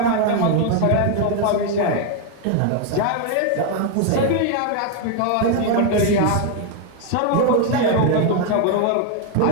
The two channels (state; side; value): different; both; correlation 0.01